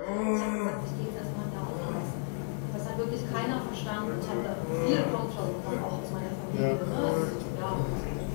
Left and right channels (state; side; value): silent; right; 56 dB below the other